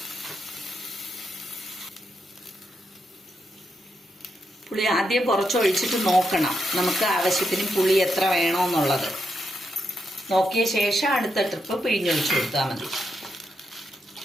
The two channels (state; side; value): normal; both; correlation 0.83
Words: പുളി ആദ്യം കുറച്ച് ഒഴിച്ചിട്ട് നോക്കണം, നമുക്ക് ആവശ്യത്തിന് പുളി എത്ര വേണമെന്നുള്ളത് നോക്കിയ ശേഷം അടുത്ത ട്രിപ്പ് പിഴിഞ്ഞൊഴിച്ച് കൊടുത്താൽ മതി.